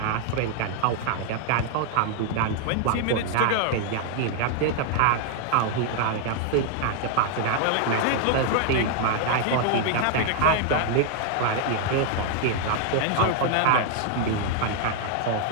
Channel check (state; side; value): different; both; correlation 0.00